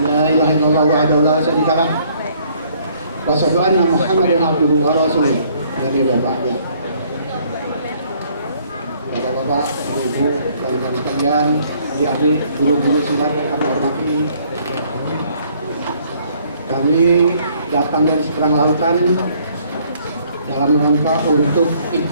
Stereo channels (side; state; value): both; inverted; correlation -0.63